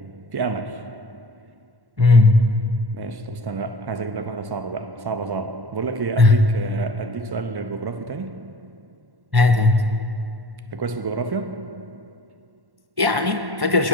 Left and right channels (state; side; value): late; left; 1.1 ms